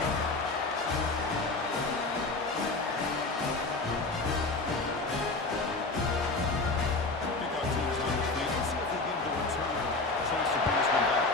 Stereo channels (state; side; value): quieter; right; 3.4 dB